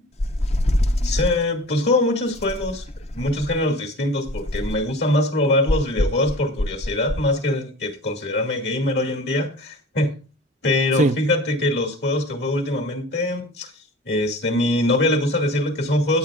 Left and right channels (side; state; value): both; normal; correlation 0.41